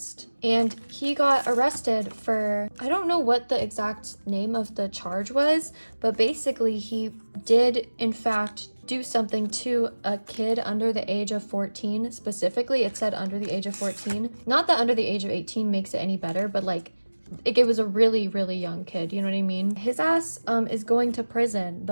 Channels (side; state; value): both; inverted; correlation -1.00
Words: and he got arrested for, I don't know what the exact name of the charge was, but basically he did in fact do something to a kid under the age of 14. Specifically, it said under the age of 14. Not that under the age of 18 makes it any better, but like it was a really, really young kid, you know what I mean? His ass is going to prison.